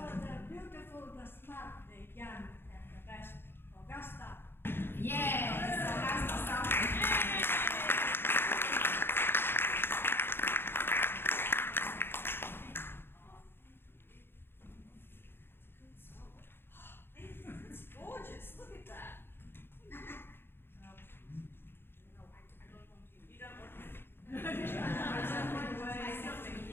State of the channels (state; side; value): late; right; 0.11 ms